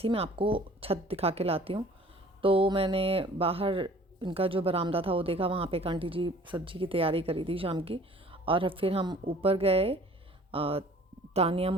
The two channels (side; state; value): both; normal; correlation 0.51